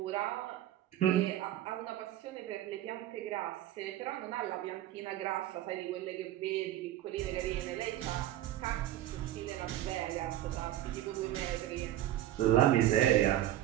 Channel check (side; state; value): left; quieter; 13.3 dB